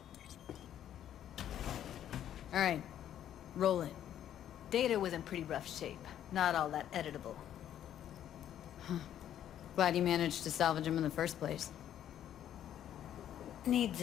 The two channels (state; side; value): quieter; right; 10.7 dB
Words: All right. Roll it. Data was in pretty rough shape. Not all that editable. Huh. Glad you managed to salvage him in the first place. Needs